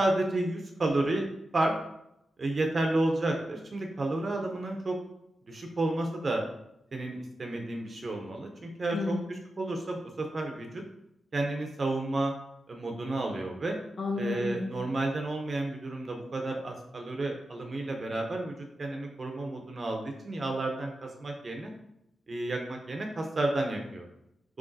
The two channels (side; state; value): both; normal; correlation 0.91